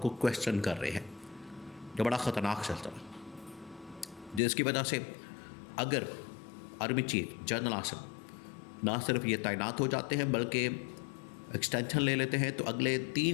क्वेश्चन कर रहे हैं, जो बड़ा ख़तरनाक सिलसिला है, जिसकी वजह से अगर आर्मी चीफ जनरल आसिम ना सिर्फ ये तैनात हो जाते हैं, बल्कि एक्सटेंशन ले लेते हैं तो अगले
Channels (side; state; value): right; drops out; at 4.4 s